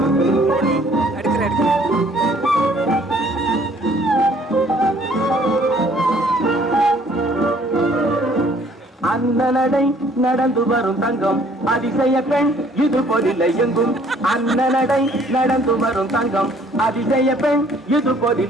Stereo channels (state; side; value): normal; both; correlation 0.59